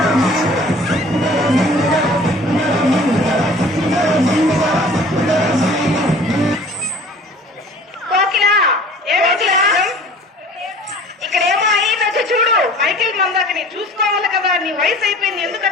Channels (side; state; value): both; normal; correlation 0.47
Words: చూసుకోవాలి కదా, నీ వయసు అయిపోయింది.